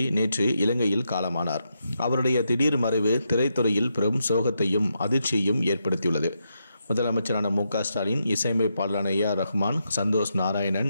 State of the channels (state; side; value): inverted; both; correlation -0.83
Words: நேற்று இலங்கையில் காலமானார். அவருடைய திடீர் மறைவு திரைத்துறையில் பெரும் சோகத்தையும் அதிர்ச்சியையும் ஏற்படுத்தியுள்ளது. முதலமைச்சரான மு.க. ஸ்டாலின், இசையமைப்பாளரான A.R. ரஹ்மான், சந்தோஷ் நாராயணன்,